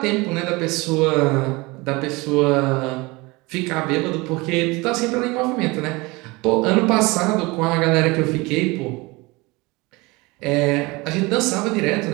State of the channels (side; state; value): left; quieter; 23.9 dB